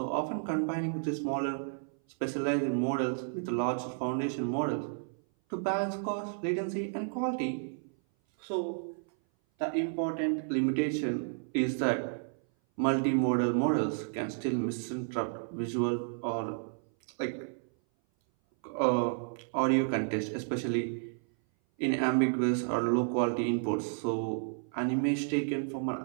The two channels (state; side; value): silent; left; 57 dB below the other